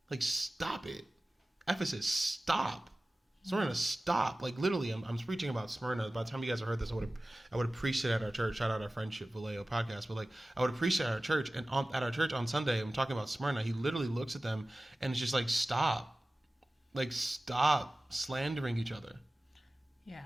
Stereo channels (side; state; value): both; normal; correlation 0.97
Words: Like, stop it. Ephesus, stop. Smyrna, stop. Like, literally, I'm preaching about Smyrna. By the time you guys have heard this, I would have preached it at our church. Shout out our Friendship Vallejo podcast. But, like, I would have preached it at our church. And at our church on Sunday, I'm talking about Smyrna. He literally looks at them and it's just like, stop. Like, stop slandering each other. Yeah.